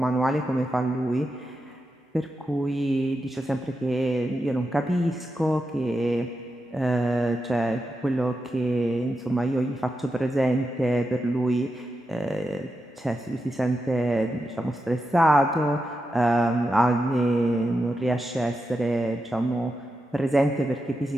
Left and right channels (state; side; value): normal; both; correlation 0.88